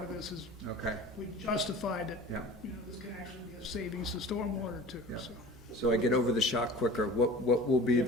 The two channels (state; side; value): normal; both; correlation 0.40